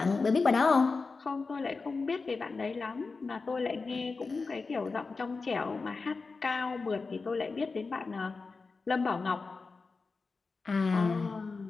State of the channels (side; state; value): right; quieter; 4.2 dB